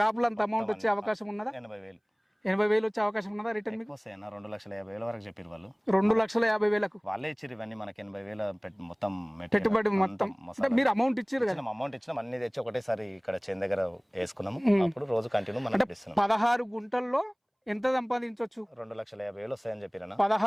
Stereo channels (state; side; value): identical; both; correlation 1.00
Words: లో అంత అమౌంట్ వచ్చే అవకాశం ఉన్నదా? 80,000 వచ్చే అవకాశం ఉన్నదా రిటర్న్ మీకు? వస్తాయన్న. 2,50,000 వరకు చెప్పారు వాళ్ళు. 2,50,000 వాళ్ళే ఇచ్చారు ఇవన్నీ మనకి. 80,000 మొత్తం పెట్టుబడి మొత్తం. మీరు అమౌంట్ ఇచ్చారు కదా? అమౌంట్ ఇచ్చినాం, అన్ని తెచ్చి ఒకటేసారి ఇక్కడ చేను దగ్గర వేసుకున్నాము. అప్పుడు రోజు కంటిన్యూ మనం 16 గుంటల్లో ఎంత సంపాదించవచ్చు? 2,50,000 వస్తాయని చెప్పిరన్న.